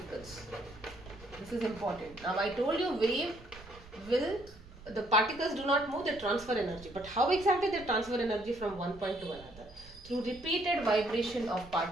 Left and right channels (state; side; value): noise; right; rumble, 19 dB below the sound